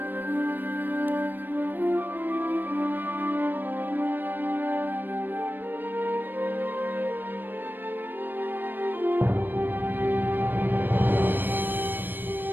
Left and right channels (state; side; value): late; left; 0.093 ms